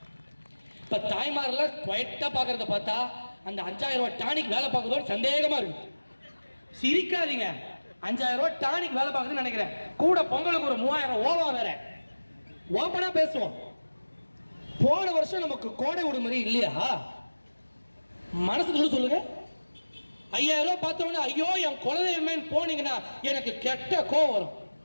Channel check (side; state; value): both; inverted; correlation -1.00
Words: இப்ப தாய்மாரெல்லாம் குவைட்டா பாக்குறத பார்த்தா அந்த 5000 ரூபாய் டானிக் வேலை பார்க்குறதோட சந்தேகமா இருக்கு. சிரிக்காதீங்க, 5000 ரூபாய் டானிக் வேலை பார்க்குதுன்னு நினைக்கிறேன். கூட பொங்கலுக்கு ஒரு 3000 ஓவா வேற. ஓப்பனா பேசுவோம். போன வருஷம் நமக்கு கோடை விடுமுறை இல்லையா? மனசுக்கு சொல்லுங்க. 5000 ரூபாய் பார்த்தோன்னா ஐயோ என் குலதெய்வமேன்னு போனீங்கன்னா எனக்கு கெட்ட கோவம் வரும்.